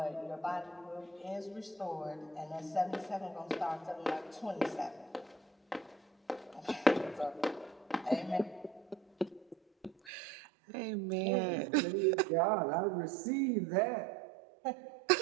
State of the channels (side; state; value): left; drops out; at 10.1 s